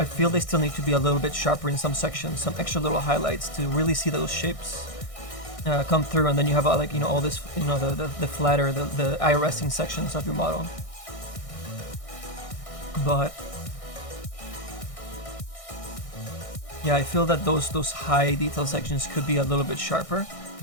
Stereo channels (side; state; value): right; late; 1.6 ms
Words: feel they still need to be a little bit sharper in some sections, some extra little highlights to really see those shapes come through, and then you have like, you know, all this, you know, the flatter, the eye resting sections of your model. But yeah, I feel that those high detail sections could be a little bit sharper.